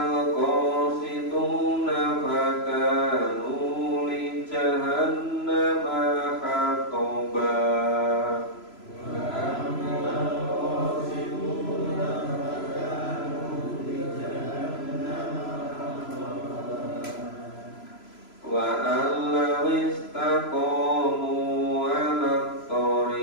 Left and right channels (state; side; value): late; right; 3.0 ms